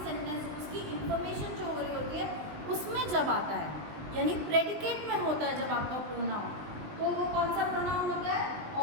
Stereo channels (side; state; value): left; late; 20 ms